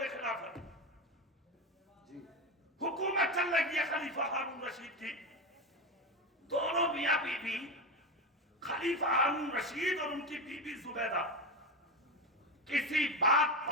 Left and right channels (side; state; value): both; normal; correlation 0.17